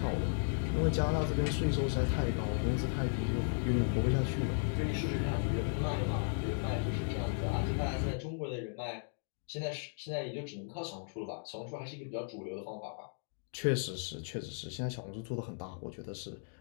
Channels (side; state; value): right; silent; digital silence